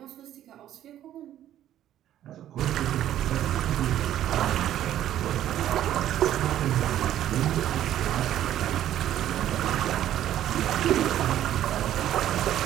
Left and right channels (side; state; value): left; quieter; 11.9 dB